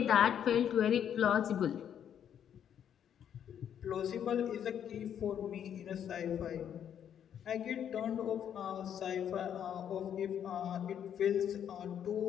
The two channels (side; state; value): right; quieter; 9.2 dB